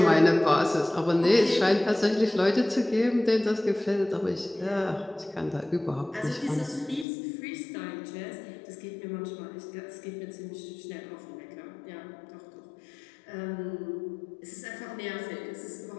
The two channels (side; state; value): right; drops out; at 7.1 s